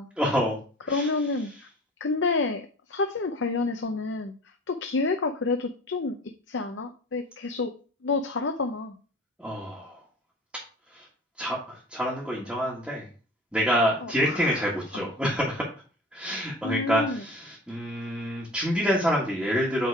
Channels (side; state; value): both; normal; correlation 0.41